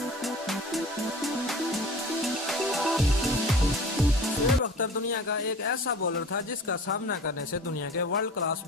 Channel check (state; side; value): normal; both; correlation 0.41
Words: शोएब अख्तर दुनिया का एक ऐसा बॉलर था जिसका सामना करने से दुनिया के वर्ल्ड क्लास